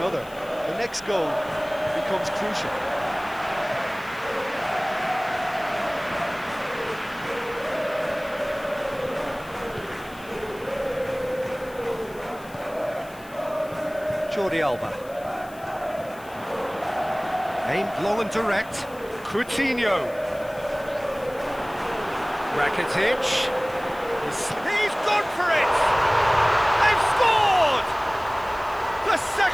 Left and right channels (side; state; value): left; noise; hiss, 23 dB below the sound